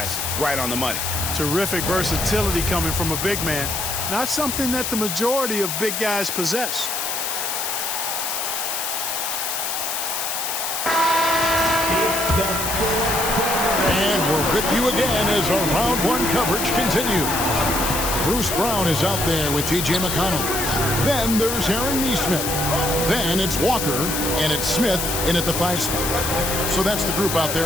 right on the money. Terrific versatility coming from a big man. Not something that the majority of big guys possess. And we're with you again as our round one coverage continues. Bruce Brown is out there with T.J. McConnell. Then there's Aaron Nesmith. Then it's Walker, and it's Smith in at the 5 spot. So that's the group out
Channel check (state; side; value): noise; left; hiss, 2 dB below the sound